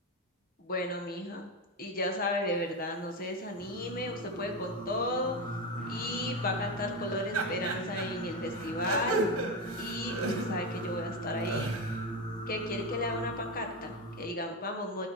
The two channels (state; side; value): normal; both; correlation 0.15